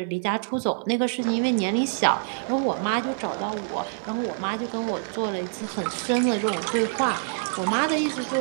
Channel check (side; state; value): left; silent; 57 dB below the other